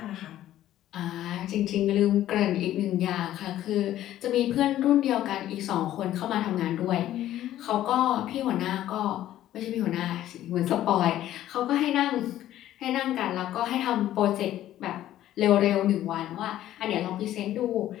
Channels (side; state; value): right; quieter; 13.0 dB